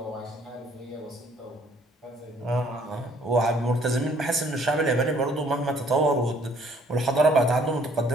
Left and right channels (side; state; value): both; normal; correlation 0.61